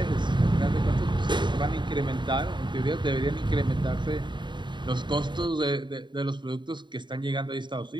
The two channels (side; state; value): left; late; 0.22 ms